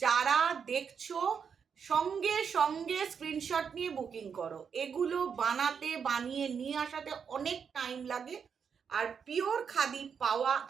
যারা দেখছো সঙ্গে সঙ্গে স্ক্রিনশট নিয়ে বুকিং করো। এগুলো বানিয়ে নিয়ে আসাতে অনেক টাইম লাগে, আর পিওর খাদি পাওয়া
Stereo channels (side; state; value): left; quieter; 6.8 dB